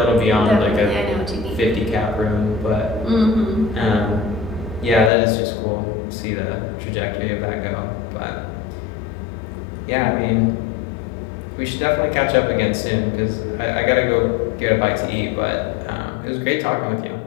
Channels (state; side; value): drops out; right; at 5.1 s